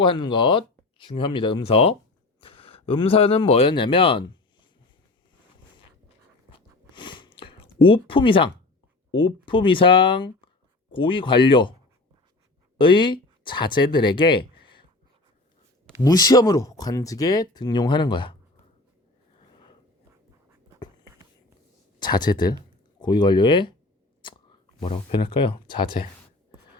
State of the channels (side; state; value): right; quieter; 3.0 dB